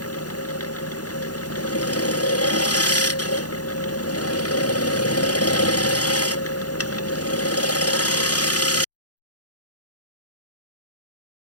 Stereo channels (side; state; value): right; late; 0.68 ms